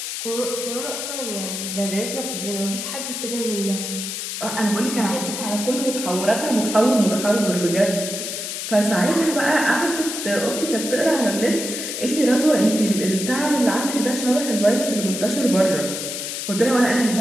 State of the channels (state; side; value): noise; left; hiss, 5 dB below the sound